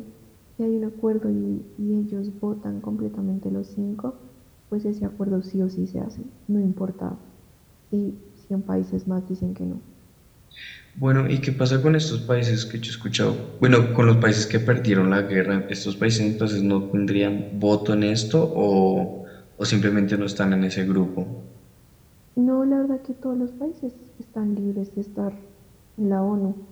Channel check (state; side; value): identical; both; correlation 1.00